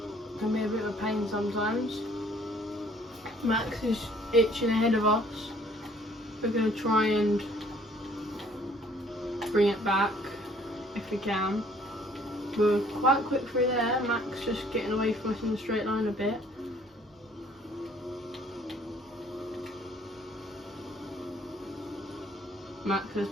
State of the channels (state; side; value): normal; both; correlation 0.58